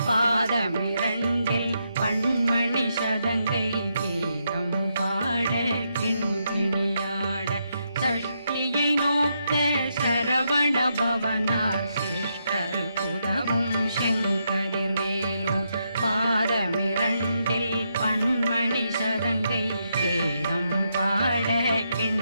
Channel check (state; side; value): inverted; both; correlation -0.81